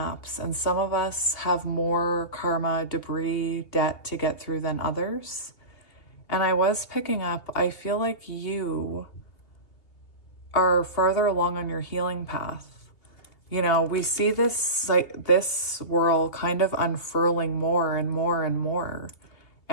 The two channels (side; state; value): right; late; 2.8 ms